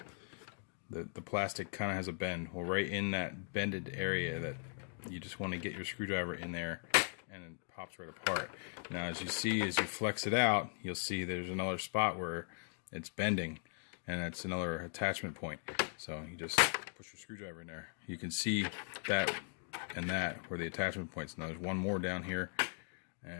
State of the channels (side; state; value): right; silent; 52 dB below the other